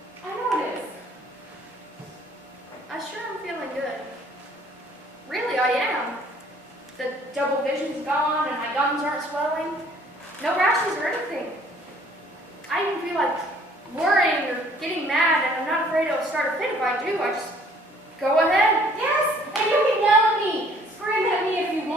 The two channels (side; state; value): both; normal; correlation 0.58